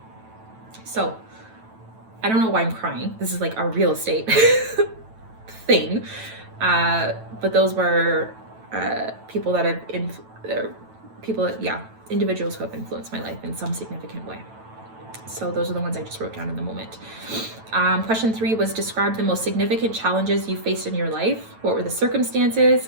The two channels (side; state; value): left; late; 9.0 ms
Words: So, I don't know why I'm crying. This is like a real estate thing. But those were people that have, individuals who have influenced my life in some significant way. So those are the ones I just wrote down in the moment. Question 3 was, describe the most significant challenges you faced in your life. What were the